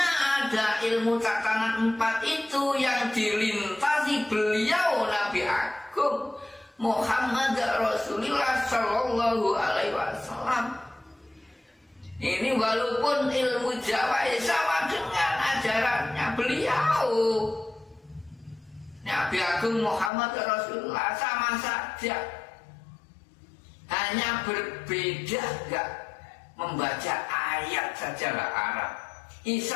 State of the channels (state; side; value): drops out; right; at 20.1 s